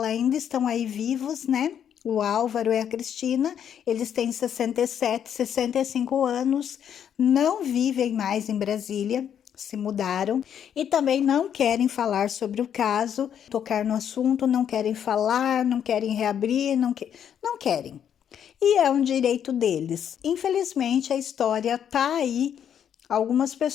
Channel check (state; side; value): quieter; right; 8.9 dB